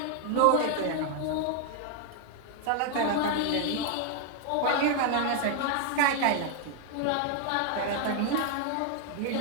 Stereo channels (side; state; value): both; different; correlation 0.00